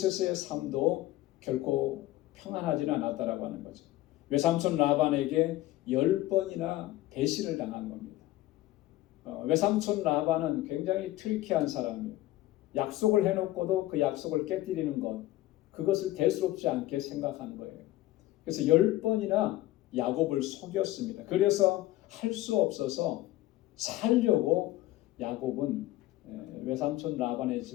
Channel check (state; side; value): quieter; right; 16.2 dB